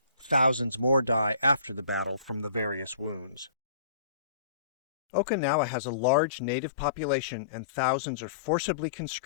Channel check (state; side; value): drops out; right; at 3.5 s